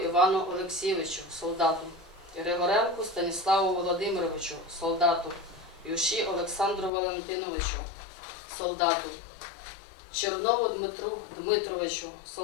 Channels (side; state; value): right; drops out; at 6.9 s